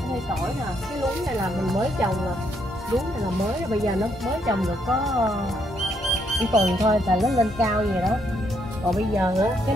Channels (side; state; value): both; normal; correlation 0.74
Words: Ở đây tỏi nè, cái luống này là mình mới trồng nè. Luống này là mới, bây giờ nó mới trồng được có một tuần thôi là nó lên cao vậy đó. Còn bây giờ á, cái